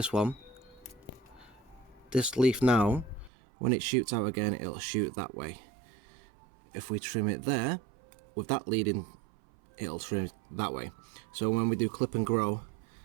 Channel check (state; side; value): drops out; left; at 3.3 s